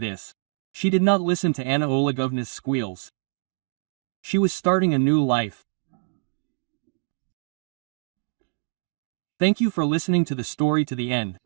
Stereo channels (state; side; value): silent; left; digital silence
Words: She did not listen to Anna Olegovna's squeals. She was starting a new life. Thank you for listening to the story to the end.